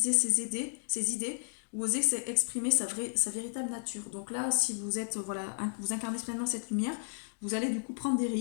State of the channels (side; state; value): right; silent; digital silence